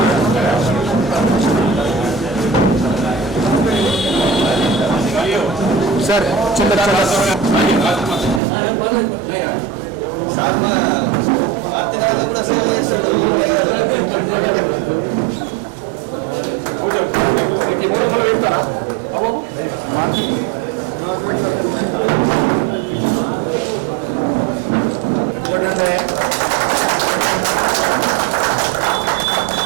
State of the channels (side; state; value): left; drops out; at 8.4 s